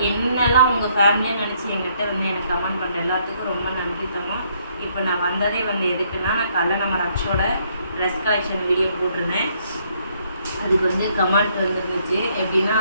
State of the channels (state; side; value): inverted; both; correlation -0.69